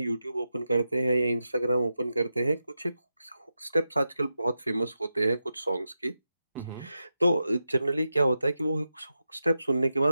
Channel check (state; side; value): inverted; both; correlation -0.89